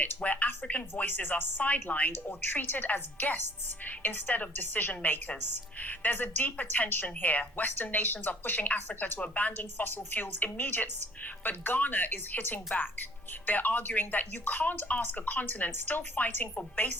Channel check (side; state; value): both; normal; correlation 0.55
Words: where African voices are sidelined or treated as guests instead of decision makers. There's a deeper tension here. Western nations are pushing Africa to abandon fossil fuels immediately, but Ghana is hitting back. They're arguing that you can't ask a continent still fighting for